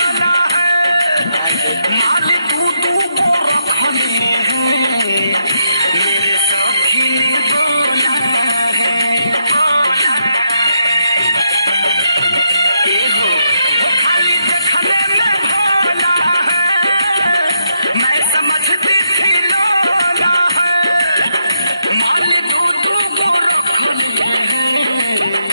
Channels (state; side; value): inverted; both; correlation -0.79